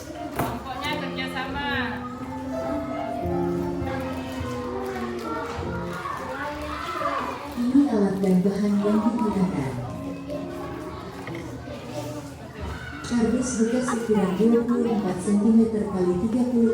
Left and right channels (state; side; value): identical; both; correlation 1.00